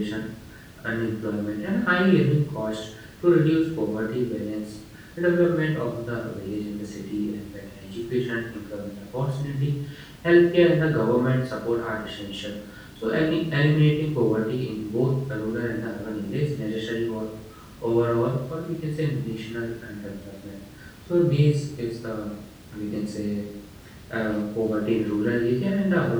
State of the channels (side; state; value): both; identical; correlation 1.00